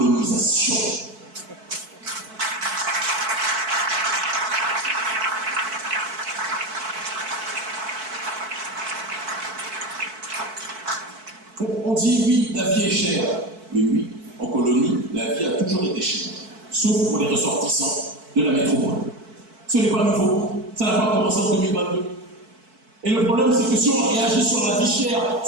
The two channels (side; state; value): left; late; 4.6 ms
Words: On dit oui, la vie est chère. Mais oui, en colonie, la vie a toujours été chère. Sauf pour les ressortissants de la métropole. Ce n'est pas nouveau. Ça n'a pas commencé en 2022. Et le problème, c'est que si on réagit sur la vie chère,